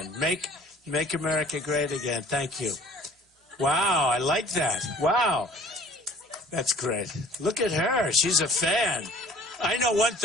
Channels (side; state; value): both; normal; correlation 0.51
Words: Make America great again. Thank you. Wow, I like that. Wow. That's great. Look at her. She's a fan. I know one